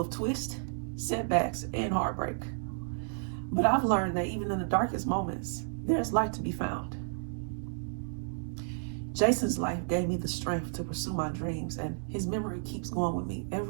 twists, setbacks, and heartbreak. But I've learned that even in the darkest moments, there's light to be found. Jason's life gave me the strength to pursue my dreams, and his memory keeps going with me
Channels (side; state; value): left; silent; 56 dB below the other